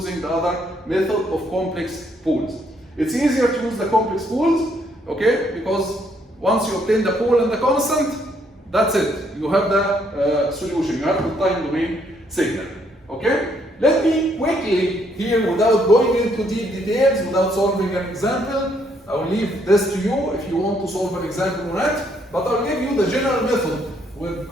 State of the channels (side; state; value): both; normal; correlation 0.70